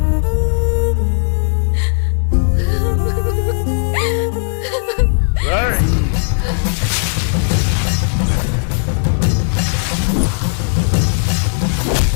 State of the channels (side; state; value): right; silent; digital silence